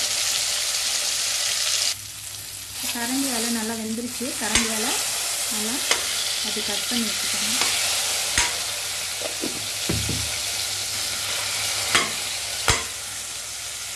கரண்டியால் நல்லா வெந்துருச்சு. கரண்டியால் நல்லா அது கட் பண்ணி வச்சுக்கோங்க.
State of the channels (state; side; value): noise; left; hum, 27 dB below the sound